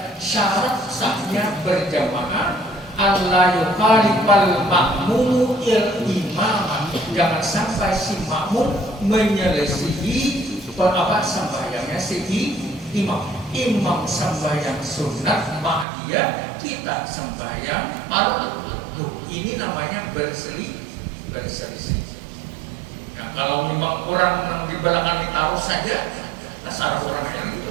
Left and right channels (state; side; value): drops out; left; at 15.9 s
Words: syarat sahnya berjamaah Allah yukhalifal makmumu il imam, jangan sampai si makmum menyelisihi sembahyangnya si imam. Imam sembahyang sunat ba'diyah, kita sembahyang fardu. Ini namanya berselisih. Nah, kalau memang orang di belakang ditaruh saja, dasar orang yang